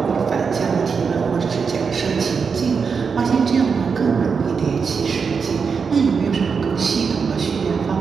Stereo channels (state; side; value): quieter; left; 5.7 dB